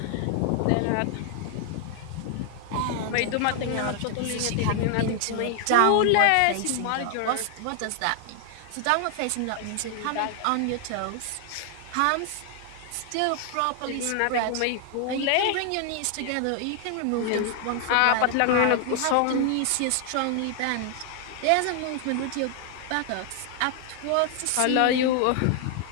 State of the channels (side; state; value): both; different; correlation 0.00